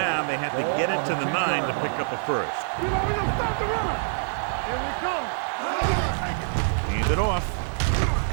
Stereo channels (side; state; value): left; silent; digital silence